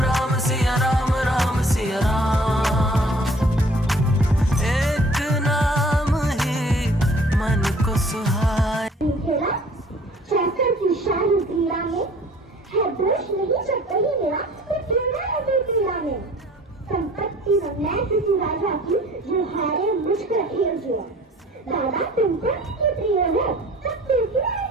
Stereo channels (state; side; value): normal; both; correlation 0.52